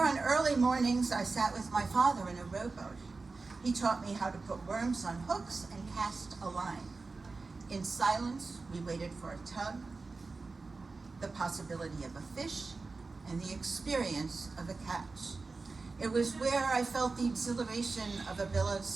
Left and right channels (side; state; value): left; quieter; 3.9 dB